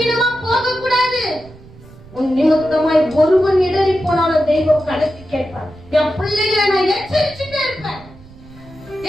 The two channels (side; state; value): right; noise; rumble, 21 dB below the sound